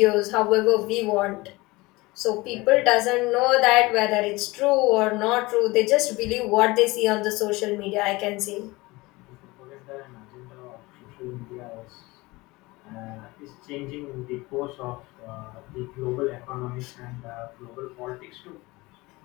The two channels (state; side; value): quieter; right; 22.1 dB